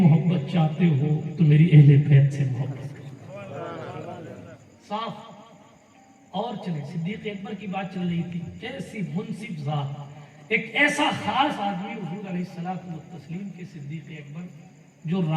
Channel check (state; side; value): identical; both; correlation 1.00